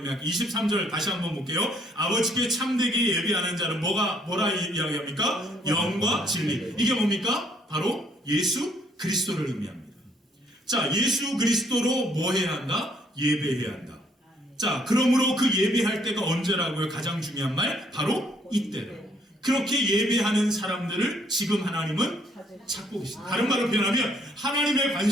23절 다시 한번 볼게요. 아버지께 참되게 예배하는 자는 뭐라 이야기합니까? 영과 진리. 이게 뭡니까? 바로 예수 그리스도를 의미합니다. 자, 예수 그리스도로 뭐 해야 한다? 예배해야 한다. 자, 그러므로 그 예배할 때가 언제라고요? 가장 중요한 말 바로 이때로. 그렇게 예배하는 사람들을 지금 하나님은 찾고 계십니다. 다른 말로 표현하면 하나님의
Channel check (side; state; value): both; normal; correlation 0.66